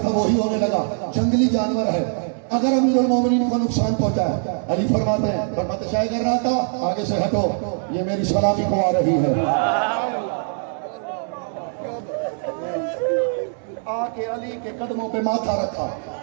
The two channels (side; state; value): left; silent; 56 dB below the other